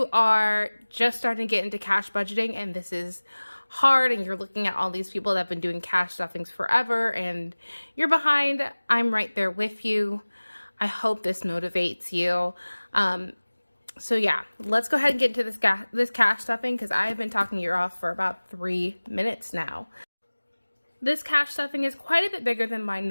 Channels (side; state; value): both; inverted; correlation -1.00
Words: are just starting to get into cash budgeting and this is hard and you're looking at all these people that have been doing cash stuffings forever and you're behind, I'm right there with you. I hope this motivates you. So yeah, let's go ahead and get into this cash stuffing, because I have been talking your off for about 3 minutes now. This cash stuffing is quite a bit bigger than my